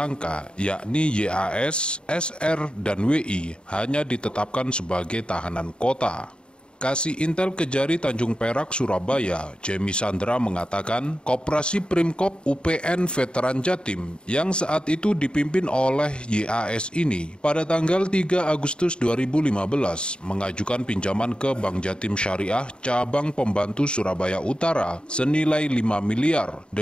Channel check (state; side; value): late; right; 0.052 ms